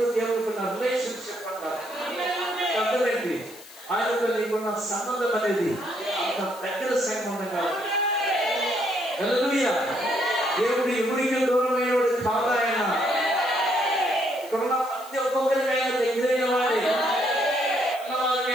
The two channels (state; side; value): noise; left; hiss, 19 dB below the sound